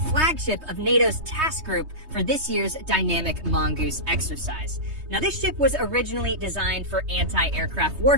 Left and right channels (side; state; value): left; late; 3.2 ms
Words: of NATO's task group for this year's Dynamic Mongoose exercise. Now, this ship was originally designed for anti-aircraft